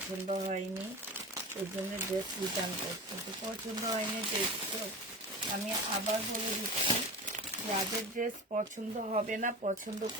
হয়নি, ওই জন্য ড্রেস রিটার্ন করছে। তো পছন্দ হয়নি ড্রেস, আমি আবার বলে দিচ্ছি, যাদের ড্রেস পছন্দ হবে না, পছন্দ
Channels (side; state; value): both; normal; correlation 0.30